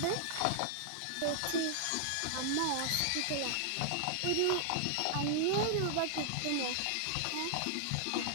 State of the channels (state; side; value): different; both; correlation -0.01